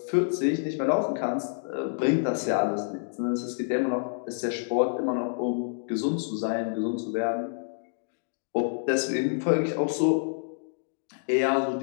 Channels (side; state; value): right; silent; digital silence